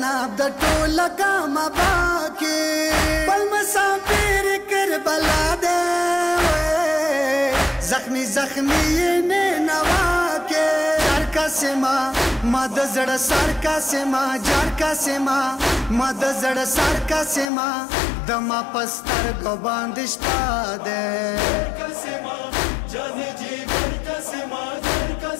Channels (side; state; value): right; drops out; at 17.4 s